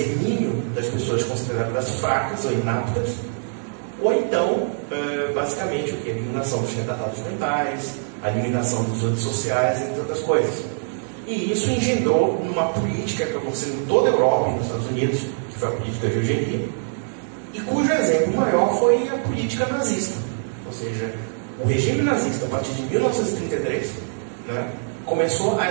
das pessoas consideradas fracas ou inaptas, ou então, basicamente, o quê? A eliminação dos retardados mentais, a eliminação dos antissociais, entre outras coisas. E isso engendrou numa política que aconteceu em toda a Europa e nos Estados Unidos, que foi a política de eugenia, e cujo exemplo maior foi a política nazista. Ou seja, o regime nazista, a partir de 1933, né, começou a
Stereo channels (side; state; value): left; silent; digital silence